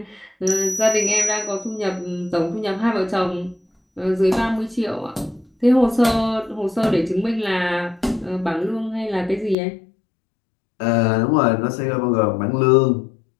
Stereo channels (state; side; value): drops out; right; at 9.6 s